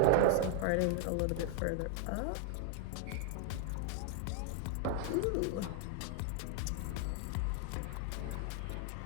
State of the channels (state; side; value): different; both; correlation 0.00